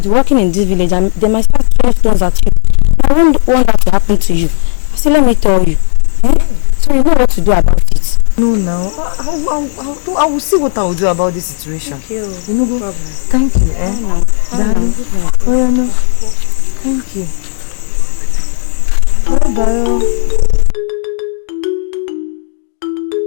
be working in this village and they might start throwing stones at you. I won't want that to happen to you. I said, let me tell you. So you know what to do about it. No, I will see what I will do about this situation. Thank you. You know, thank you, darling. Oh, yeah, no. Thank you. Bye-bye.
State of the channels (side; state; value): right; silent; 60 dB below the other